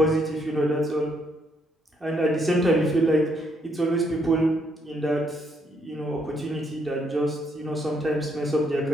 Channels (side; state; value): both; normal; correlation 0.73